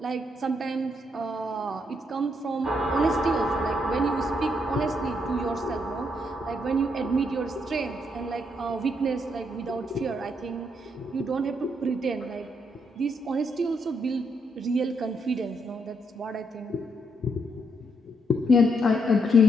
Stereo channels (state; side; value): normal; both; correlation 0.76